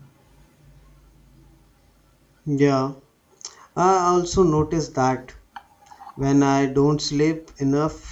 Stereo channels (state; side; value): identical; both; correlation 1.00